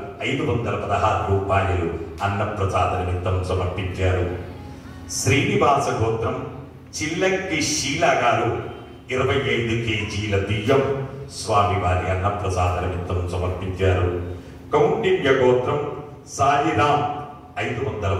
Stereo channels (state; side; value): identical; both; correlation 1.00